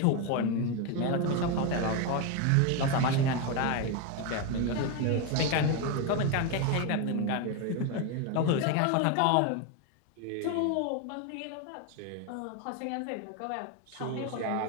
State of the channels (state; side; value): different; both; correlation 0.02